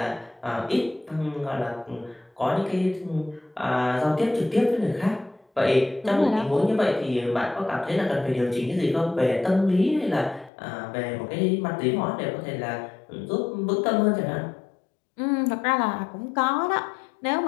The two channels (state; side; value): drops out; right; at 10.5 s